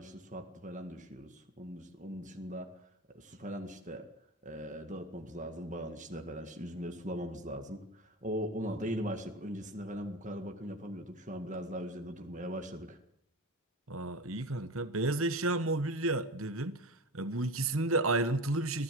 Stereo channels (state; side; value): normal; both; correlation 0.28